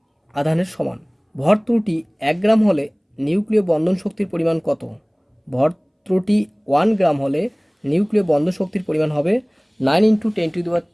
আধানের সমান। ভর ত্রুটি 1 গ্রাম হলে নিউক্লিয় বন্ধন শক্তির পরিমাণ কত? ভর ত্রুটি 1 গ্রাম হলে নিউক্লিয় বন্ধন শক্তির পরিমাণ হবে 9 ×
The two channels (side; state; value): both; identical; correlation 1.00